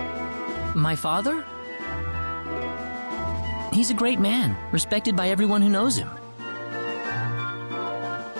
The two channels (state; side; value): inverted; both; correlation -1.00